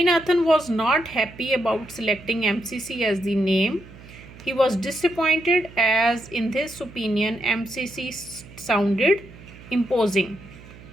was not happy about selecting MCC as the name. He was disappointed as in his opinion MCC sounded imposing.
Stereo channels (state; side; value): noise; right; hum, 19 dB below the sound